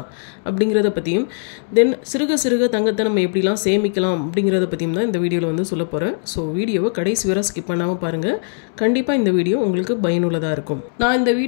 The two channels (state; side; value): silent; right; digital silence